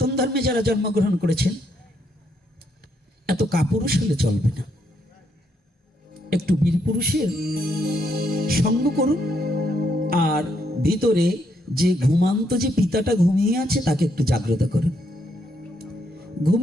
ধর্মে যারা জন্মগ্রহণ করেছেন, এত কাপুরুষ হলে চলবে না, একটু বীর পুরুষের সঙ্গ করুন। আর ভিতরে যে ঘুমান্ত যে পিতাটা ঘুমিয়ে আছে তাকে একটু জাগ্রত করুন।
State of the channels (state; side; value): normal; both; correlation 0.75